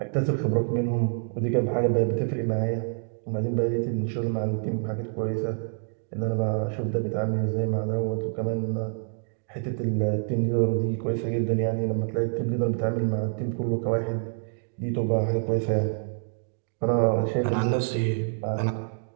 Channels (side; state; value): left; silent; digital silence